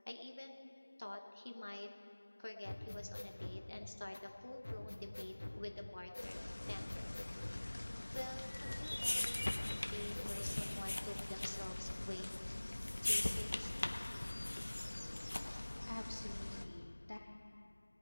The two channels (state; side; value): inverted; both; correlation -1.00